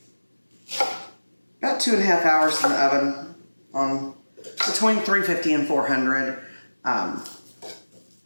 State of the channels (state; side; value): inverted; both; correlation -1.00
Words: about 2.5 hours in the oven on between 350 and 400.